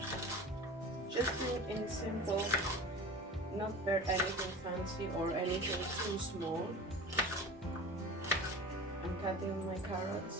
Just in simple, not very anything fancy or anything too small. I'm cutting my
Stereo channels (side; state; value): both; normal; correlation 0.35